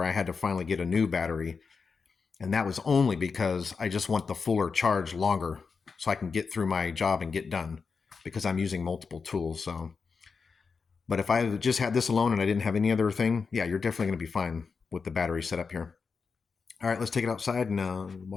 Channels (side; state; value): right; quieter; 5.1 dB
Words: I had to finally get a new battery, and that was only because I just want the fuller charge longer so I can get through my job and get done because I'm using multiple tools. So, but if I just had this alone and I didn't have any other thing, yeah, you're definitely going to be fine with the battery set up here. All right, let's take it outside and